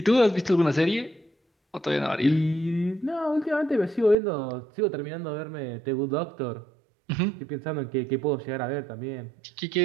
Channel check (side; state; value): left; drops out; at 4.2 s